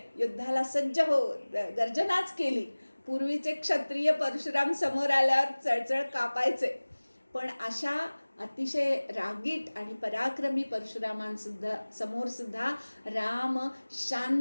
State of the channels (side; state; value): both; inverted; correlation -1.00